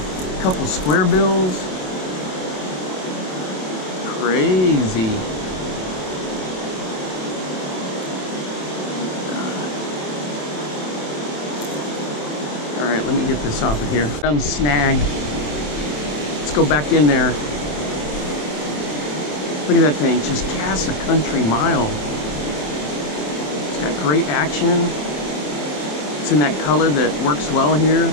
couple squarebills. Crazy. All right, let me get this off of here. Done snagged. Let's go back in there. Look at that thing, just casts a country mile. It's got great action. It's in that color that works well here.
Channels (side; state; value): right; late; 27 ms